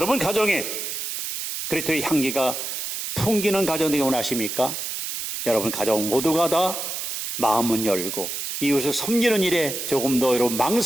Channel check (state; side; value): noise; right; hiss, 5 dB below the sound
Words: 가정에 그리스도의 향기가 풍기는 가정 되기 원하십니까? 여러분 가정 모두가 다 마음은 열고 이웃을 섬기는 일에 조금 더 여러분